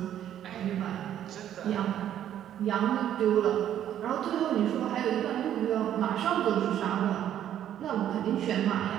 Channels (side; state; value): left; quieter; 10.8 dB